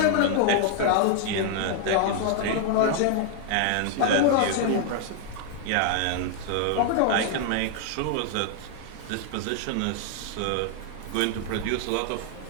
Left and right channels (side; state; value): both; different; correlation 0.00